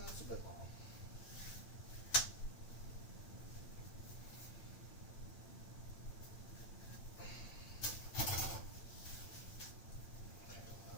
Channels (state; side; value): late; right; 8.9 ms